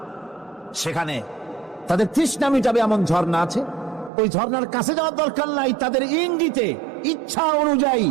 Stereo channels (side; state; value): left; drops out; at 4.1 s